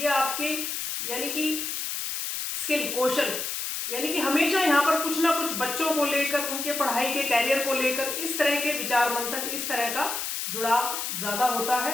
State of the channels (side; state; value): left; noise; hiss, 3 dB below the sound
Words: आपके यानी कि स्किल कौशल, यानी कि हमेशा यहाँ पर कुछ ना कुछ बच्चों को लेकर, उनके पढ़ाई के कैरियर को लेकर इस तरह के विचार मंथन, इस तरह का जुड़ाव ज्यादा होता